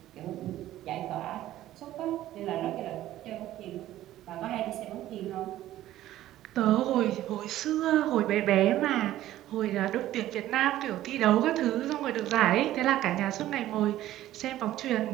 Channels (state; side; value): quieter; left; 14.0 dB